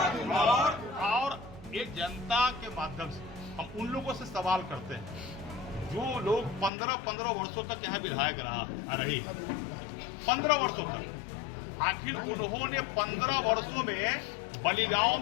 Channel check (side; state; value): right; drops out; at 6.7 s